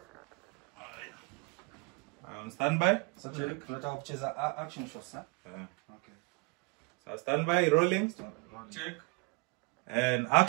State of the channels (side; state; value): left; quieter; 29.5 dB